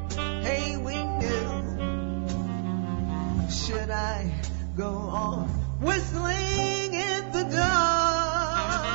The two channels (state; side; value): silent; left; 57 dB below the other